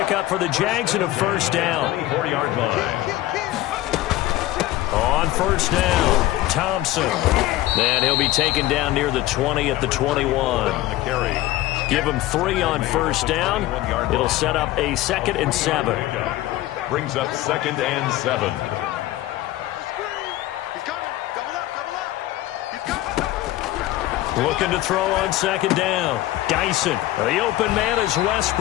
for the Jags and a first down. 24-yard line. On first down, Thompson. And he'll be taken down near the 20 at the 21. Give him 3 on first down. It'll set up a 2nd and 7. Brings up 2nd and 7. Looking to throw on 2nd down. Dyson. The open man is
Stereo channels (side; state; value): right; quieter; 15.9 dB